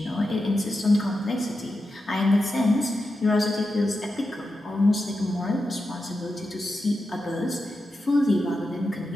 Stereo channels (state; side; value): normal; both; correlation 0.89